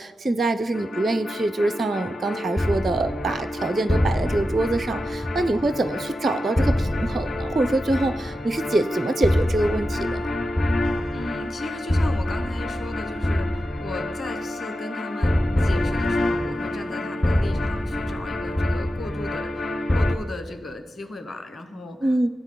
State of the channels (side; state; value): both; normal; correlation 0.90